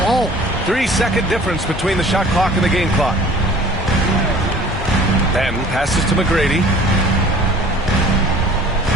falling. 3-second difference between the shot clock and the game clock. Ben passes to McGrady.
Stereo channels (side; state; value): both; normal; correlation 0.48